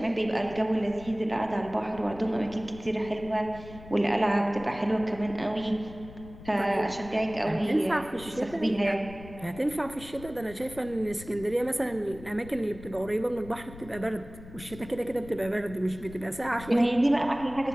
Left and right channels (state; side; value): noise; left; rumble, 16 dB below the sound